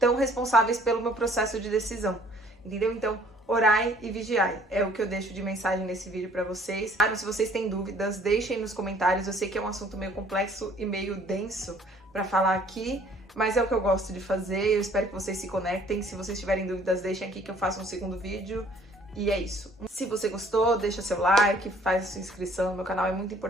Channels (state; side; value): normal; both; correlation 0.58